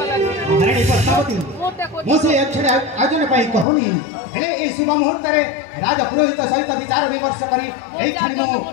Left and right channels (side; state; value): right; drops out; at 3.7 s